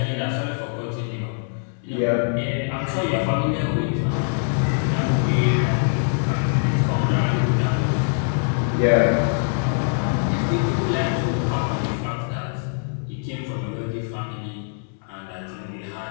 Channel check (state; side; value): silent; right; digital silence